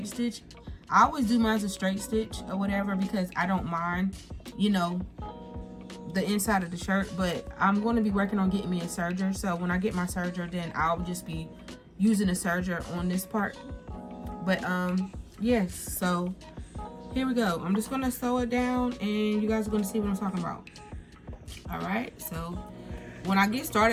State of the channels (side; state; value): both; identical; correlation 1.00